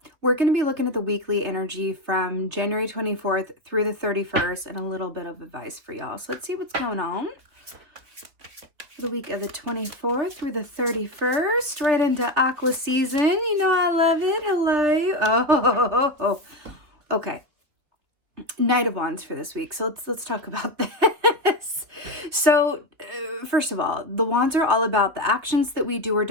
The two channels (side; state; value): left; late; 3.8 ms